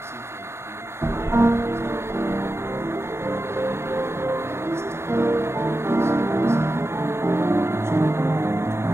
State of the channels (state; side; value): late; left; 0.13 ms